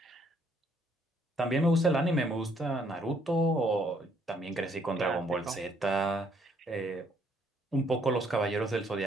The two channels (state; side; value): normal; both; correlation 0.67